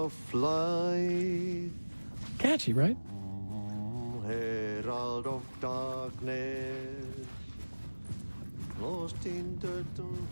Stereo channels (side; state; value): both; inverted; correlation -1.00